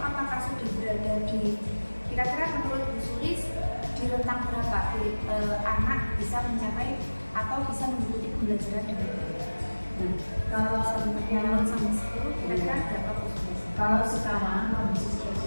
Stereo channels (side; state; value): both; inverted; correlation -1.00